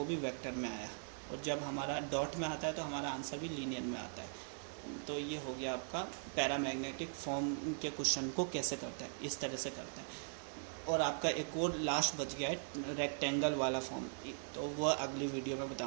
भी वेक्टर में आया, और जब हमारा डॉट में आता है तो हमारा आंसर भी लीनियर में आता है। तो ये हो गया आपका पैरामैग्नेटिक फॉर्म के क्वेश्चन को कैसे करते हैं, इस तरह से करते हैं। और आपका एक और लास्ट बच गया है रेक्टेंगल वाला फॉर्म, तो वह अगली वीडियो में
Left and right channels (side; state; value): left; silent; 51 dB below the other